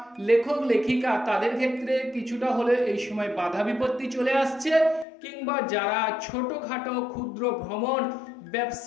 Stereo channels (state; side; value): drops out; right; at 5.1 s